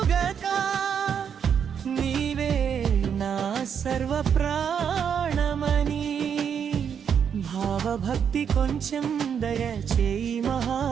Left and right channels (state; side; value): quieter; left; 7.7 dB